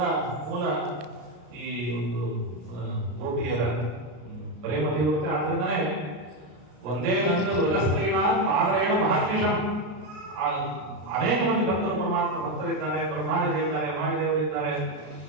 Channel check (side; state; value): left; late; 33 ms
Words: ಮೂಲ ಈ ಒಂದು ಗೋಪಿಯರ ಪ್ರೇಮ ತೀವ್ರತೆ. ಆದ್ರಿಂದನೇ ಒಂದೇ ವೃಜಸ್ತ್ರೀಣ ಆದರೇನು ಮಹರ್ನಿಷಂ. ಅನೇಕ ಮಂದಿ ಭಕ್ತರು ಪರಮಾತ್ಮ ಭಕ್ತರಿದ್ದಾರೆ, ಬ್ರಹ್ಮಾದಿಗಳಿದ್ದಾರೆ, ವಾಯುದೇವರಿದ್ದಾರೆ,